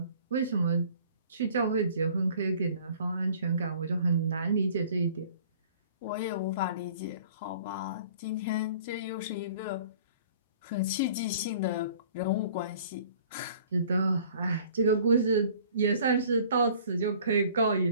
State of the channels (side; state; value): both; inverted; correlation -0.51